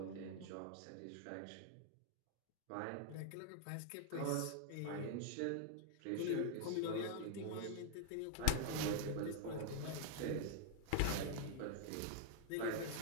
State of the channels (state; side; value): different; both; correlation -0.01